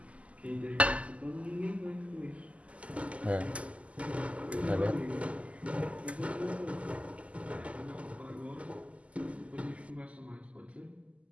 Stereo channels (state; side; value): late; left; 0.064 ms